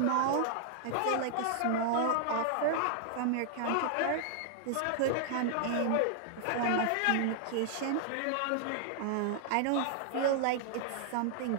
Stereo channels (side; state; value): both; different; correlation 0.00